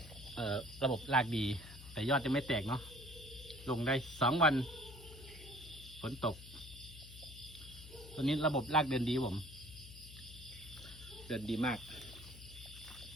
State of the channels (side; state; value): left; noise; hum, 15 dB below the sound